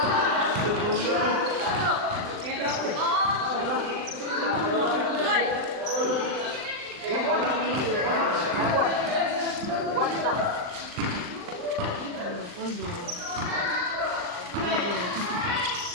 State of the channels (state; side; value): late; left; 39 ms